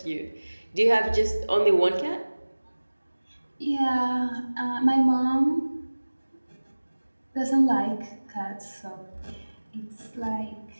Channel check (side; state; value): both; inverted; correlation -1.00